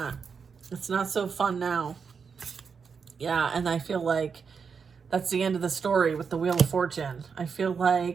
It's not so fun now. Yeah, and I feel like That's the end of the story with the Wheel of Fortune. I feel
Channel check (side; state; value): left; quieter; 5.9 dB